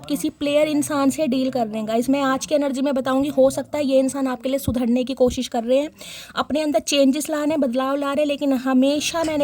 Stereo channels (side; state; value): both; identical; correlation 1.00